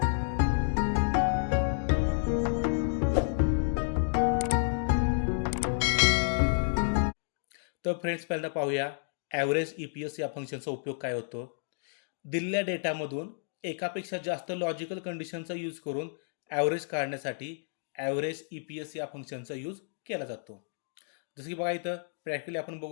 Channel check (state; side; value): silent; right; digital silence